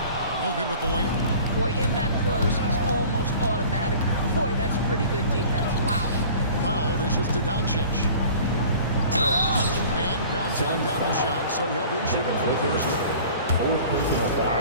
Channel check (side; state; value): both; inverted; correlation -0.45